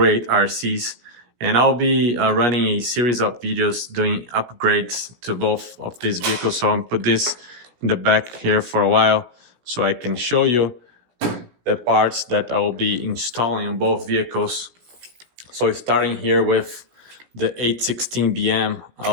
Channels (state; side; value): late; left; 17 ms